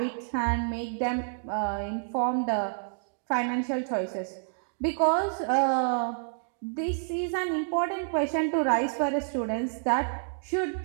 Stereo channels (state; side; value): silent; left; digital silence